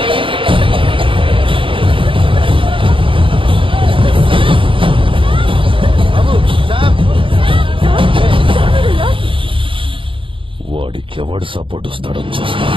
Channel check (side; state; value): left; late; 0.25 ms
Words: వాడికి ఎవడు సపోర్ట్ వస్తాడో చూస్తా.